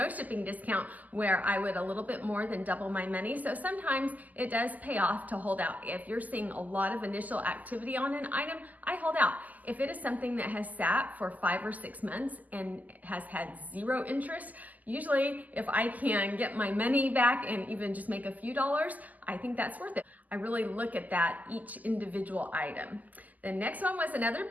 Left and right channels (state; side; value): late; left; 0.080 ms